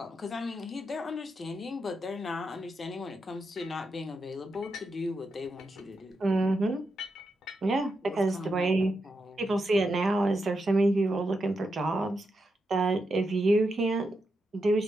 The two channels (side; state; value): both; normal; correlation 0.85